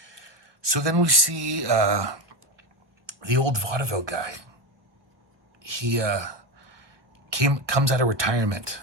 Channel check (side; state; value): left; late; 1.2 ms